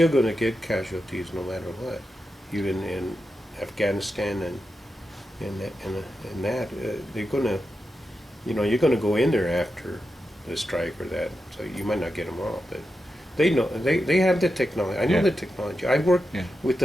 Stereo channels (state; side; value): normal; both; correlation 0.89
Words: going to get casualties no matter what, even in Afghanistan and that. They're going to, you know, you're going to go in there after the strike or that, so you might not get them all, but they know, they have the technology. I know Yeah. the technology. I worked Yeah. with